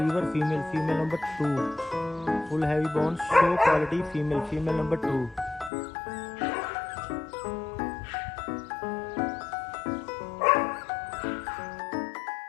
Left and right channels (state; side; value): drops out; right; at 5.7 s